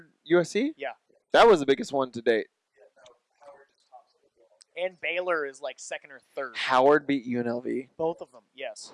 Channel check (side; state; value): both; identical; correlation 1.00